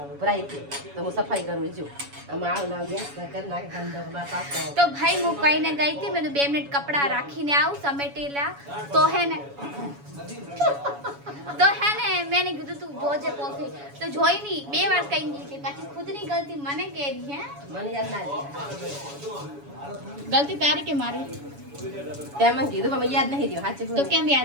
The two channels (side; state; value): left; late; 7.1 ms